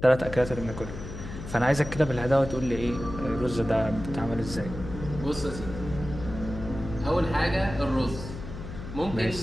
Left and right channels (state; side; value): noise; left; hum, 10 dB below the sound